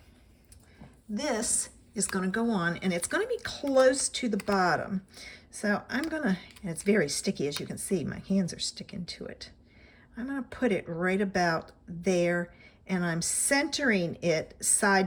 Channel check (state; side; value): identical; both; correlation 1.00